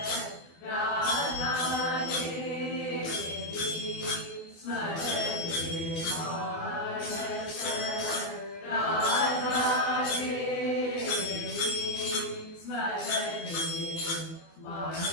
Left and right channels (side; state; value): right; late; 24 ms